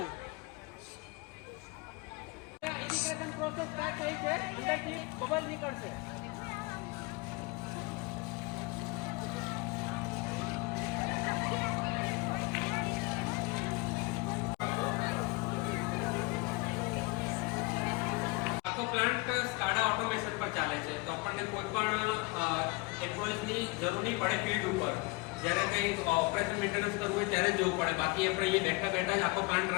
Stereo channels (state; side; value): quieter; right; 25.3 dB